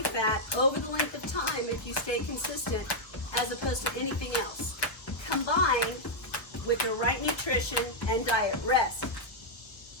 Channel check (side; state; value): right; late; 1.3 ms